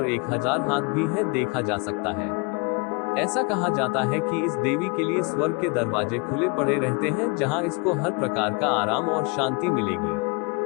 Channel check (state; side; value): quieter; right; 30.0 dB